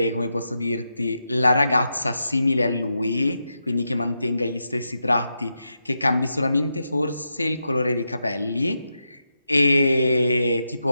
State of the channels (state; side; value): inverted; both; correlation -0.86